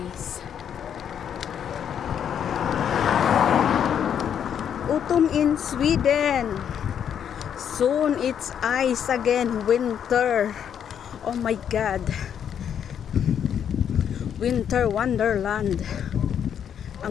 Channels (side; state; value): right; quieter; 8.7 dB